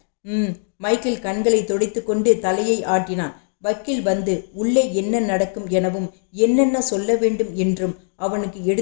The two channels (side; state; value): right; silent; digital silence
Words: மைக்கேல் கண்களை துடைத்து கொண்டு தலையை ஆட்டினான். வக்கீல் வந்து உள்ளே என்ன நடக்கும் எனவும் என்னென்ன சொல்ல வேண்டும் என்றும் அவனுக்கு